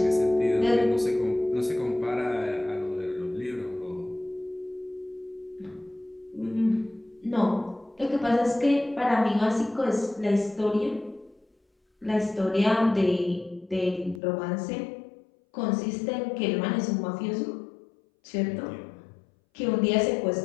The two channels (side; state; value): right; drops out; at 14.2 s